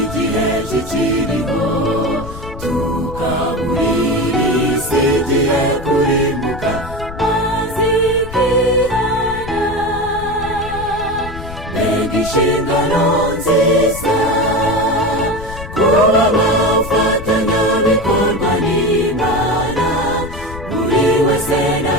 kikiriho, tukaburira isi igihe kurimbuka maze ikihana. Mbega inshingano nziza kuba abafatanyabikorwa n'Imana, buri wese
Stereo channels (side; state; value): left; noise; rumble, 12 dB below the sound